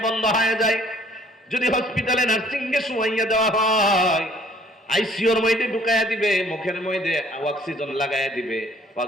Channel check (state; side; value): normal; both; correlation 0.58